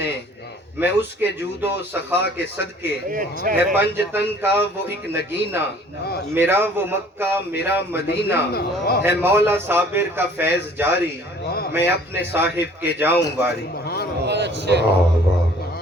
میں اس کے جود و سخا کے صدقے، ہے پنج تن کا وہ ایک نگینہ، میرا وہ مکہ میرا مدینہ، ہے مولا صابر کا فیض جاری، میں اپنے صاحب کے جاؤں واری۔ واہ واہ،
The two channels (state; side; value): normal; both; correlation 0.53